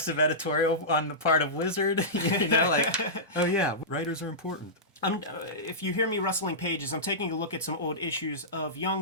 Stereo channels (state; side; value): normal; both; correlation -0.17